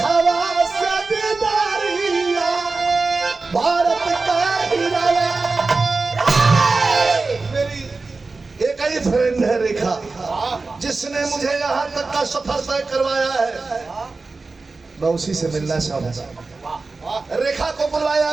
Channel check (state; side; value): quieter; left; 3.8 dB